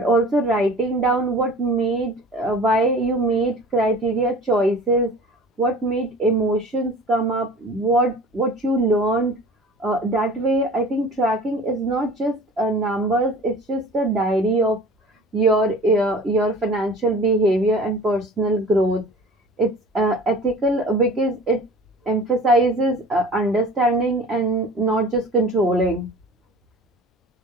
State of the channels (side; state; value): both; normal; correlation 0.42